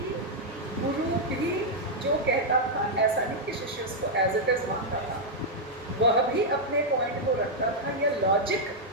गुरु भी जो कहता था ऐसा नहीं कि शिष्य उसको एज इट इज मानता था, वह भी अपने पॉइंट को रखता था या लॉजिक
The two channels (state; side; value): normal; both; correlation -0.04